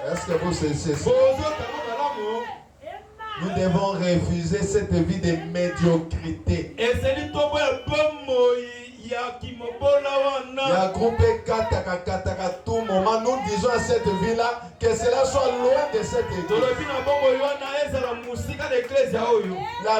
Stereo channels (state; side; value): identical; both; correlation 1.00